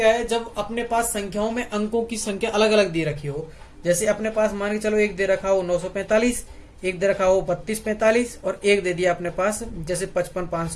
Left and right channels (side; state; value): both; identical; correlation 1.00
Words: है, जब अपने पास संख्याओं में अंकों की संख्या अलग अलग दे रखी हो, जैसे अपने पास मान के चलो एक दे रखा हो 945, एक दे रखा हो 3245 और एक दे दिया अपने पास जैसे